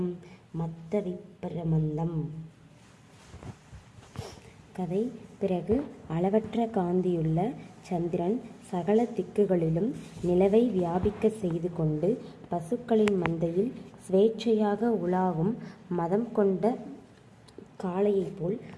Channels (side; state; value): both; identical; correlation 1.00